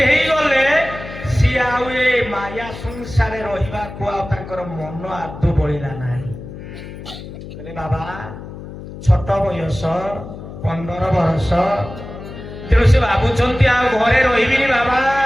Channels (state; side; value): noise; left; hum, 12 dB below the sound